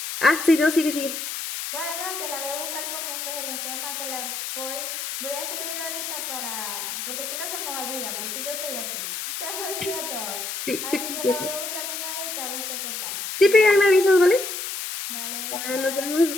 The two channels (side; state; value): left; noise; hiss, 5 dB below the sound